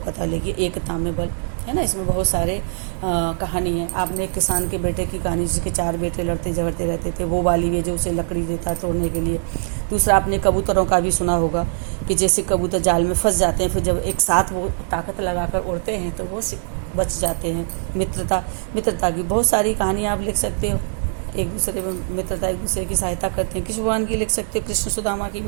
कथा लिखिए। एकता में बल है ना, इसमें बहुत सारे कहानी है। आपने एक किसान के बेटे की कहानी, जिसके 4 बेटे लड़ते झगड़ते रहते थे, वो वाली है जो उसे लकड़ी देता है तोड़ने के लिए। दूसरा आपने कबूतरों का भी सुना होगा कि जैसे कबूतर जाल में फंस जाते हैं, फिर जब एक साथ वो ताकत लगाकर उड़ते हैं तो वो बच जाते हैं। मित्रता की बहुत सारी कहानियाँ आप लिख सकते हो। एक दूसरे में मित्रता, एक दूसरे की सहायता करते हैं। कृष्ण भगवान की लिख सकते हो, कृष्ण सुदामा की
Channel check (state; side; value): silent; left; digital silence